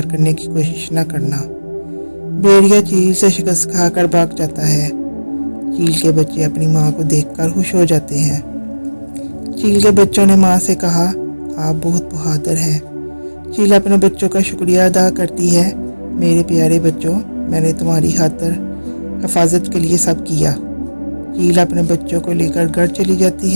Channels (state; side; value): inverted; both; correlation -1.00